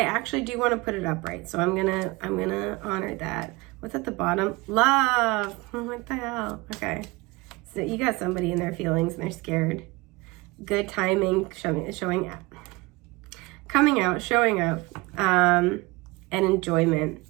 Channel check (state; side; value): quieter; left; 23.4 dB